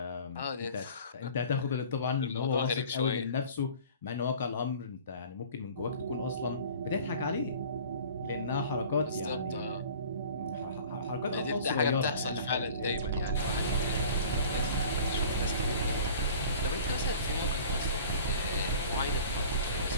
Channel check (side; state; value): both; inverted; correlation -0.45